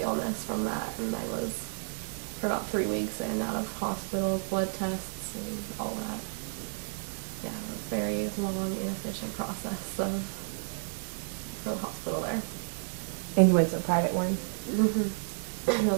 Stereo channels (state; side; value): silent; left; digital silence